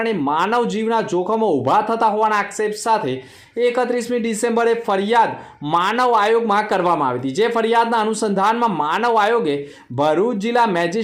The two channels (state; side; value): identical; both; correlation 1.00